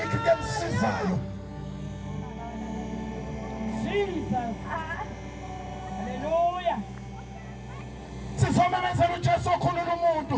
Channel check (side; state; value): both; identical; correlation 1.00